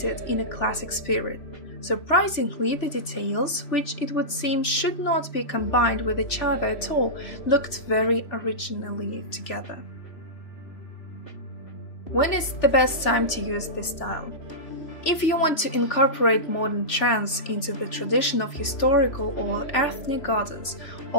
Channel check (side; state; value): right; late; 3.0 ms